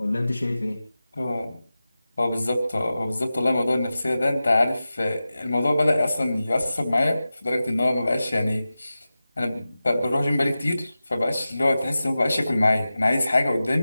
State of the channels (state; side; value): inverted; both; correlation -0.95